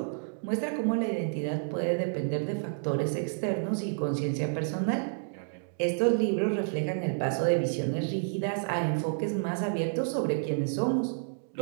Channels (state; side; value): silent; left; digital silence